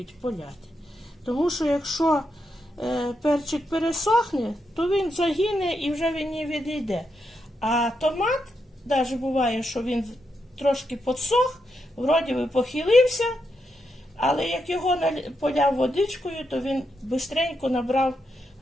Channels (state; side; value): normal; both; correlation 0.83